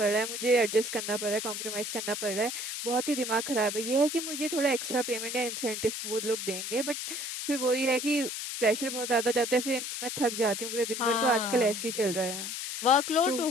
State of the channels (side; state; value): left; noise; hiss, 5 dB below the sound